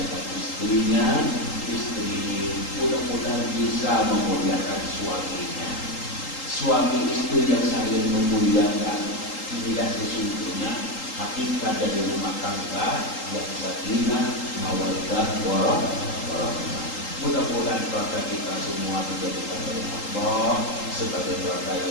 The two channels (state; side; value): late; right; 3.8 ms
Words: istrinya, istri mudah-mudahan bisa memuliakan suaminya. suami istri yang saling memuliakan. Inilah sesungguhnya hakikat dari rumah tangga yang sakinah, mawaddah, warahmah. Mudah-mudahan keluarga kita semua dijadikan oleh Allah sebagai keluarga